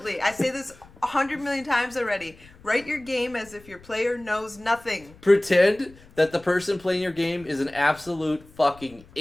Damian. I say this 100 million times already. Write your game as if your player knows nothing. Pretend that the person playing your game is an absolute fucking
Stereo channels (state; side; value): noise; left; rumble, 24 dB below the sound